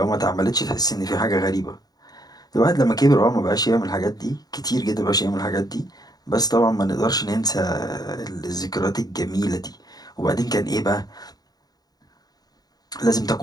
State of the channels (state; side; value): late; right; 0.19 ms